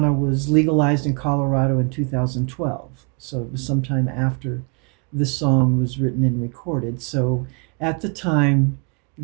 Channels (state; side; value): quieter; left; 36.4 dB